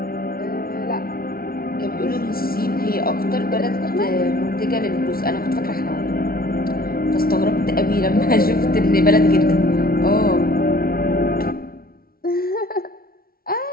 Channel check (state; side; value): late; right; 0.43 ms